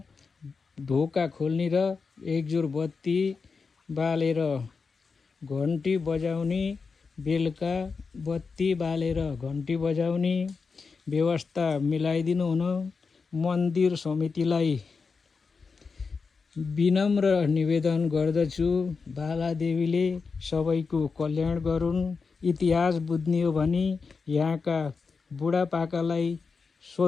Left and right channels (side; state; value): right; quieter; 4.9 dB